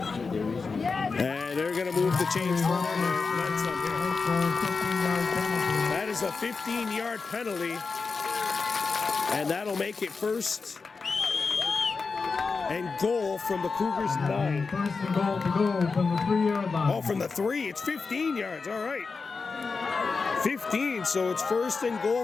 And they're going to move the chains forward. That is a 15-yard penalty. And that'll make it 1st and goal from the Cougars 9. 1st and goal to go from the 3-yard line. Oh, from the 3, it's 15 yards. All right. 15, so it's 1st and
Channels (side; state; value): right; quieter; 4.6 dB